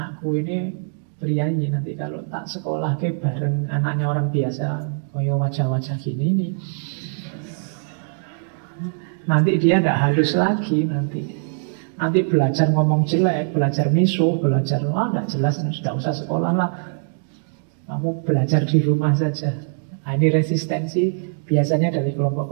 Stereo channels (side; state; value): left; silent; digital silence